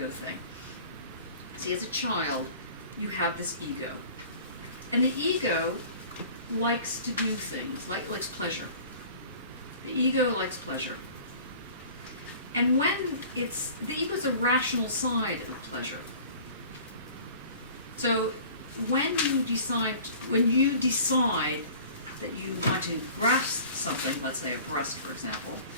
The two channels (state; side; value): inverted; both; correlation -0.45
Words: thing. See, as a child, you have this ego. And the ego likes to do things, likes pleasure. The ego likes pleasure. And when the ego is a rational side of pleasure. So when you decide that you want to grasp something, let's say a breast, for example.